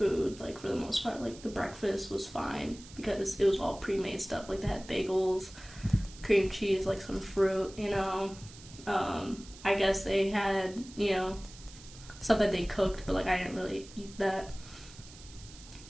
like, for the most part. Like, the breakfast was fine because it was all pre-made stuff. Like, they had bagels, cream cheese, like, some fruit, you know. I guess they had, you know, stuff that they cooked, but, like, I didn't really eat that.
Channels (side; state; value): right; noise; hiss, 19 dB below the sound